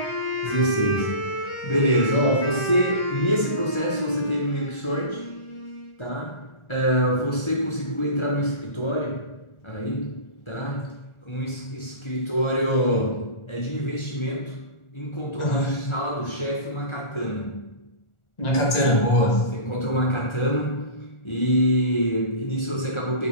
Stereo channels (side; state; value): right; late; 1.4 ms